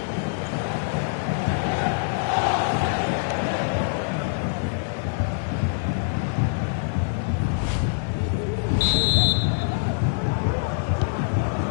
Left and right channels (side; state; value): right; silent; digital silence